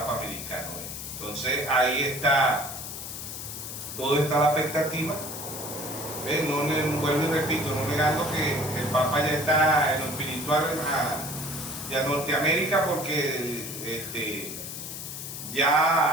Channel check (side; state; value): left; noise; hiss, 8 dB below the sound